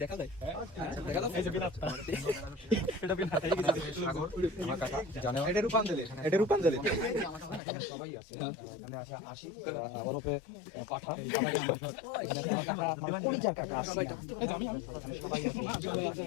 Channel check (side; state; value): right; drops out; at 7.6 s